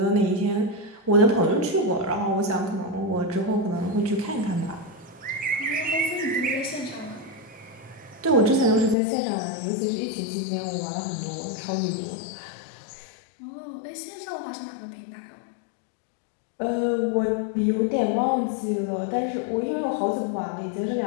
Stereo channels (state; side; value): drops out; right; at 9.0 s